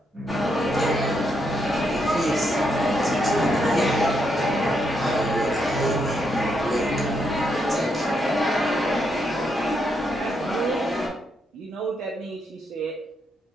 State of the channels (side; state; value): both; normal; correlation 0.78